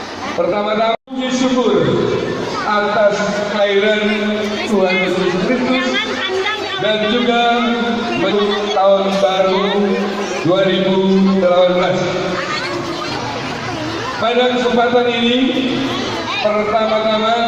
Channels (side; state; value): both; identical; correlation 1.00